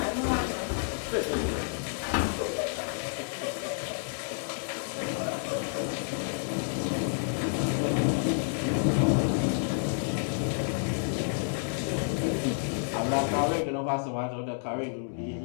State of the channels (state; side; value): silent; right; digital silence